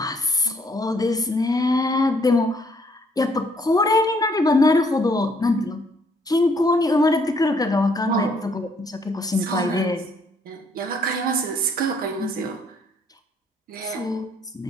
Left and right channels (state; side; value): normal; both; correlation 0.67